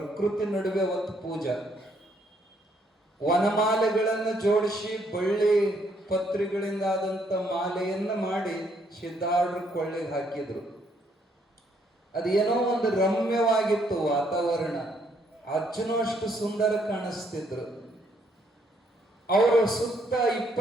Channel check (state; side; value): normal; both; correlation 0.70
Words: ನಡುವೆ ಒಂದು ಪೂಜಾ, ವನಮಾಲೆಗಳನ್ನು ಜೋಡಿಸಿ ಬಳ್ಳಿ ಪತ್ರಿಗಳಿಂದ ಆದಂತ ಮಾಲೆಯನ್ನ ಮಾಡಿ ಸಿದ್ಧಾರೂಢರ ಕೊಳ್ಳೆಗೆ ಹಾಕಿದ್ರು. ಅದೇನೋ ಒಂದು ರಮ್ಯವಾಗಿತ್ತು ವಾತಾವರಣ. ಅಜ್ಜನೂ ಅಷ್ಟು ಸುಂದರ ಕಾಣಿಸ್ತಿದ್ರು. ಅವರು ಸುತ್ತ